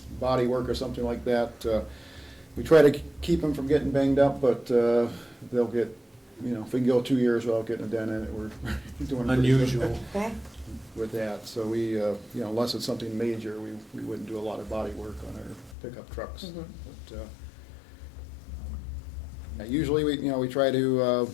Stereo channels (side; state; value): right; drops out; at 15.8 s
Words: body work or something like that, we try to keep them from getting banged up, but they'll get, if we can go 2 years without getting a dent in it, we're doing pretty good Unusual. Okay. with that. So we, unless it's something major, we wouldn't do a lot of body work on our pickup trucks. Mhm. But usually we try to